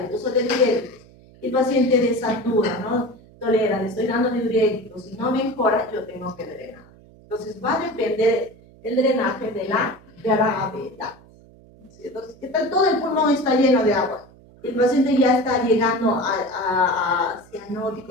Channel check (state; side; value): noise; right; hum, 25 dB below the sound